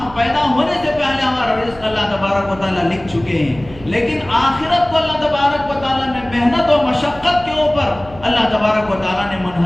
پیدا ہونے سے پہلے ہمارا رزق اللہ تبارک و تعالیٰ لکھ چکے ہیں، لیکن آخرت کو اللہ تبارک و تعالیٰ نے محنت و مشقت کے اوپر اللہ تبارک و تعالیٰ نے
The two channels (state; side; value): noise; right; hum, 20 dB below the sound